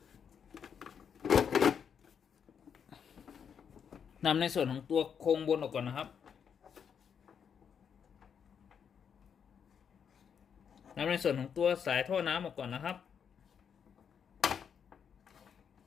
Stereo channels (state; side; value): quieter; right; 7.4 dB